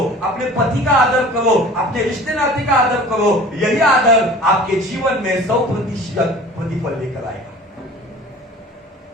अपने पति का आदर करो, अपने रिश्ते नाते का आदर करो। यही आदर आपके जीवन में 100% प्रतिफल लेकर आएगा।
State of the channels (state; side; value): normal; both; correlation 0.43